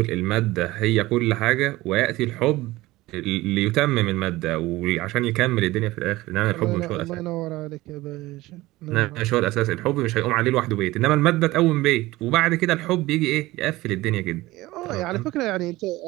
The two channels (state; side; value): quieter; left; 18.6 dB